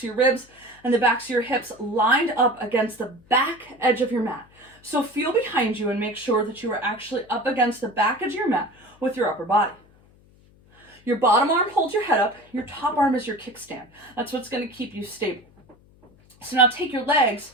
your ribs, and the backs of your hips lined up against the back edge of your mat. So feel behind you and make sure that you are actually up against the back edge of your mat with your upper body. Your bottom arm holds your head up. Your top arm is your kickstand. That's what's going to keep you stable. So now take your legs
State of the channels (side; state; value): left; noise; hum, 29 dB below the sound